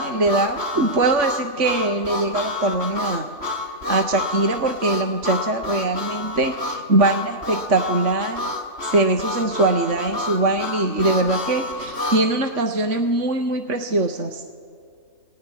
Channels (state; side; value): late; left; 3.1 ms